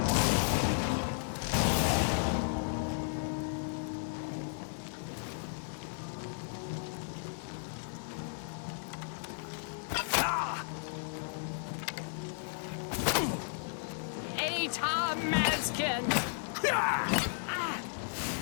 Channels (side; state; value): right; silent; digital silence